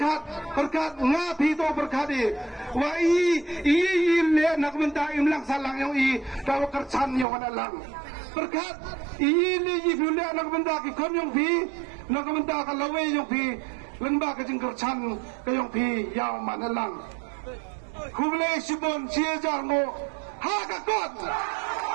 ngapi to berkat wa i le nak minta imlang salang yang i daw kercan yang manalang berkat i le i le nak minta ki kon yang pi nak minta ka lawe yang pi lengba ka jing kercan ka yang pi yaw manalang hule sibon cie jarno ha ka kon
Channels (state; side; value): drops out; left; at 7.2 s